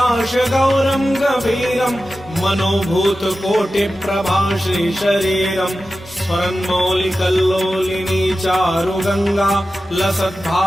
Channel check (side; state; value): both; normal; correlation 0.93